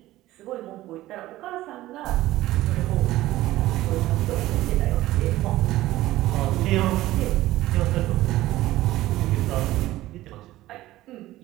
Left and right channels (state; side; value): quieter; left; 16.1 dB